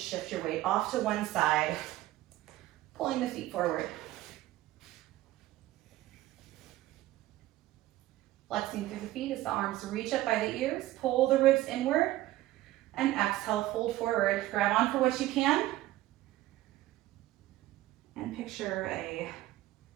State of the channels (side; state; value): left; quieter; 16.1 dB